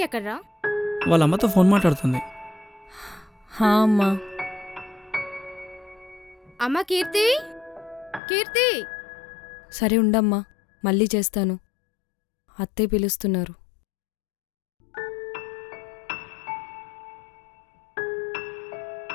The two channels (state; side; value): drops out; right; at 8.2 s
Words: ఎక్కడ్రా? వాళ్ళ అమ్మతో ఫోన్ మాట్లాడుతుంది. హా అమ్మా. అమ్మ కీర్తి, కీర్తి. సరే ఉండమ్మా, మళ్ళీ చేస్తాను. అత్తయ్య పిలుస్తున్నారు.